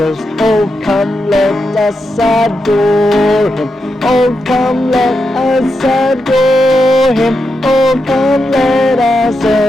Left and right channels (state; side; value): normal; both; correlation 0.86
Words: oh come let us adore him oh come let us adore him oh come let us